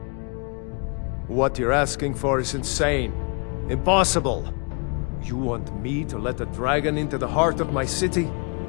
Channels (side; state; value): right; quieter; 34.5 dB